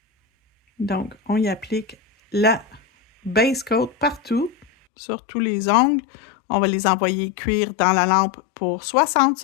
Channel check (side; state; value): right; drops out; at 4.7 s